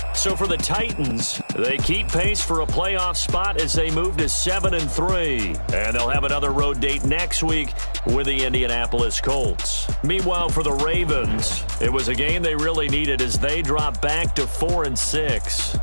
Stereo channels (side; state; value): both; inverted; correlation -1.00